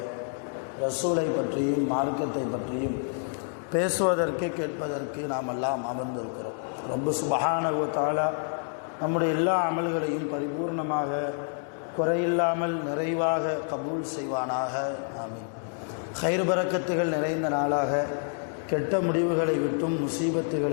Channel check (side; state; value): right; silent; 59 dB below the other